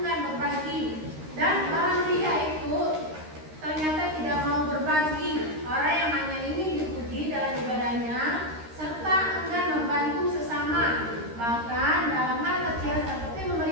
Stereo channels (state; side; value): late; left; 13 ms